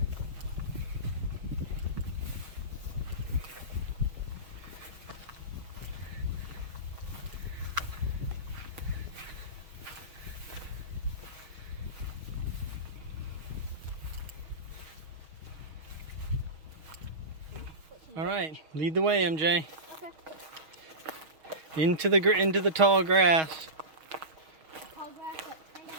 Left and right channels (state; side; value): late; left; 6.4 ms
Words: All right, lead the way, MJ. Okay. Into the tall grass. Tall grass that kind of